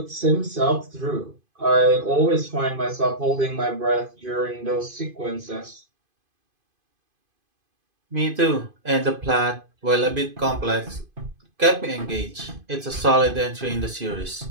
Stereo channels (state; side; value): late; left; 2.5 ms